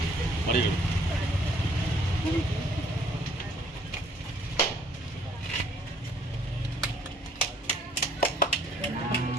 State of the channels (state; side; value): normal; both; correlation 0.62